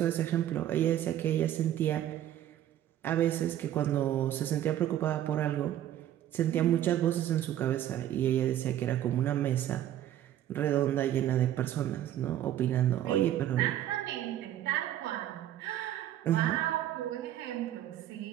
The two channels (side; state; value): left; quieter; 12.0 dB